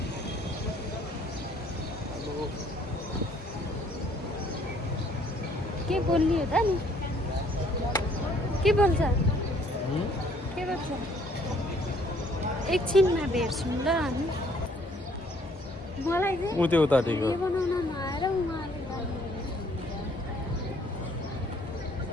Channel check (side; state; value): both; normal; correlation 0.62